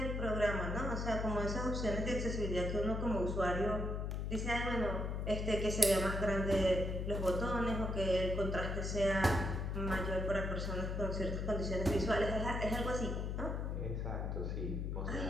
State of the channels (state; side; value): noise; left; hum, 2 dB below the sound